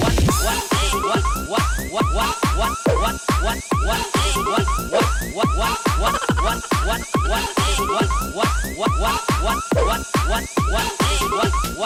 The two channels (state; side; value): identical; both; correlation 1.00